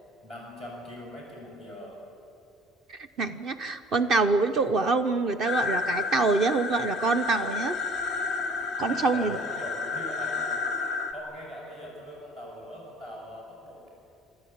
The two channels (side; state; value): both; normal; correlation 0.50